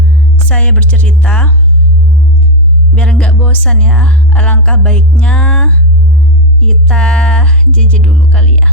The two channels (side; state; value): both; normal; correlation 0.02